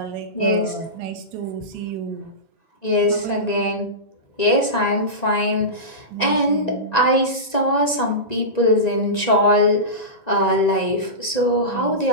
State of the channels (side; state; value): right; late; 1.9 ms